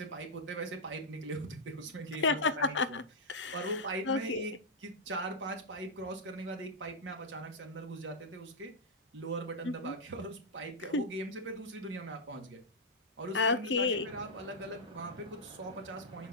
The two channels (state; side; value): normal; both; correlation -0.07